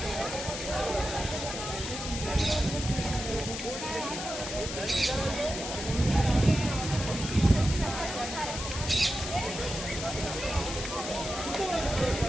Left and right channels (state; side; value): noise; left; hiss, 6 dB below the sound